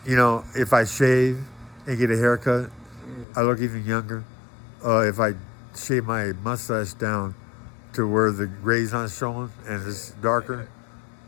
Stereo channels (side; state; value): right; drops out; at 3.2 s